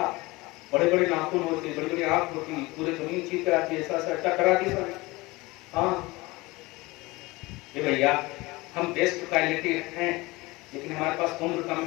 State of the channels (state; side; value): quieter; right; 22.2 dB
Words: بڑے بڑے ناخن ہوتے, بڑی بڑی آنکھ ہوتی, پورے زمین چیز کراتی, ایسا ایسا ٹکراتی سب. ہاں یہ بھیا ہم بیسٹ کوالٹی ہیں, لیکن ہمارے پاس عمر کم